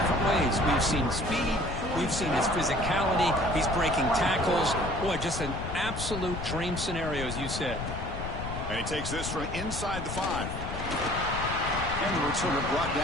ways. We've seen speed. We've seen his physicality. He's breaking tackles. Boy, just an absolute dream scenario, as you said. And he takes this from inside the 5. And the returner brought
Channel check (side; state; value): left; noise; rumble, 6 dB below the sound